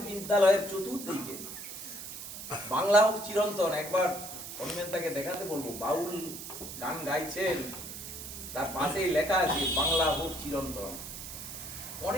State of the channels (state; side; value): noise; right; hiss, 9 dB below the sound